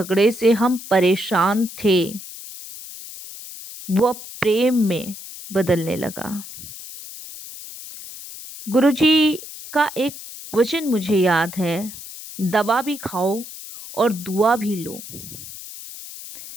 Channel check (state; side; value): noise; left; hiss, 13 dB below the sound